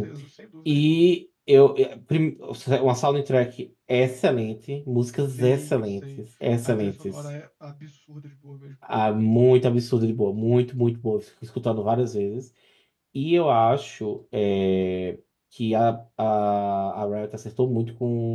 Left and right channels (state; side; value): identical; both; correlation 1.00